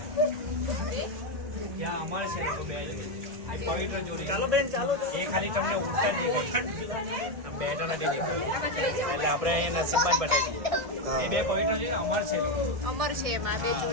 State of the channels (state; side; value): late; left; 1.6 ms